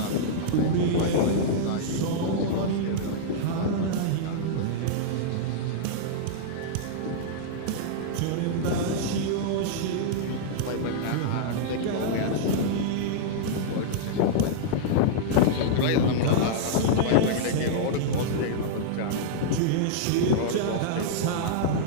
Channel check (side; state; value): both; different; correlation -0.02